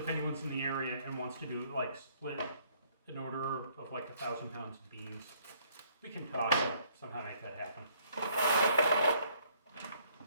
anyone's in the area and wants to do like split an order of like 1,000 pounds of beans. We can talk and somehow make that happen.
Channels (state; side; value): inverted; both; correlation -0.64